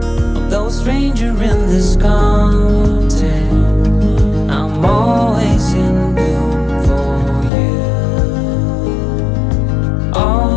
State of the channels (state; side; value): drops out; right; at 7.5 s